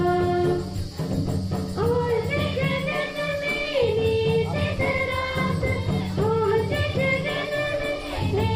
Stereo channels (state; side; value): identical; both; correlation 1.00